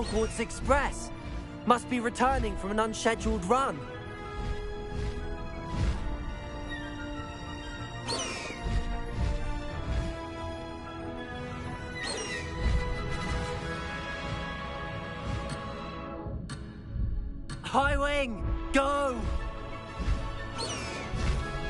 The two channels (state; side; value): identical; both; correlation 1.00